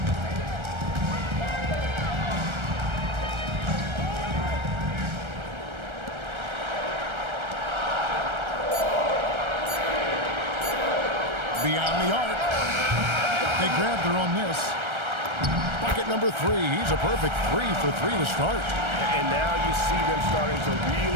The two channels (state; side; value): late; left; 1.3 ms